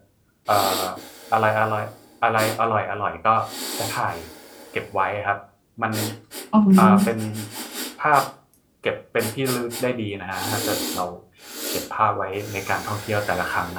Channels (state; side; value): identical; both; correlation 1.00